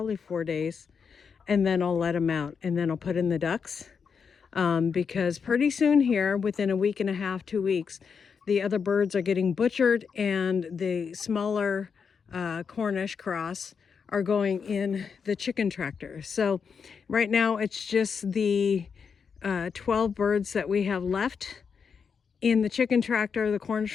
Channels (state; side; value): quieter; right; 6.2 dB